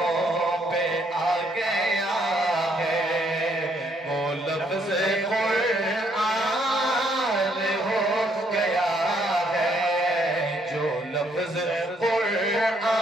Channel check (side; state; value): both; normal; correlation 0.70